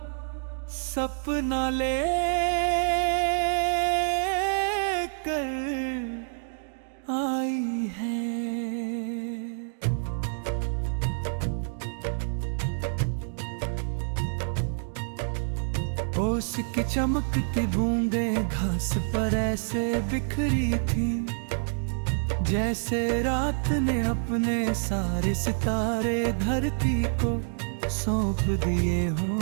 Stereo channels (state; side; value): silent; left; digital silence